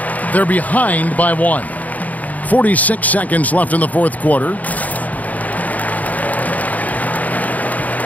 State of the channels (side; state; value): right; late; 0.074 ms